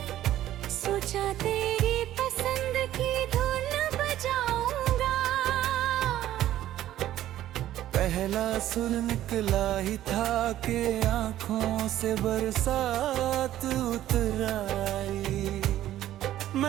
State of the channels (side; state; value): left; quieter; 13.1 dB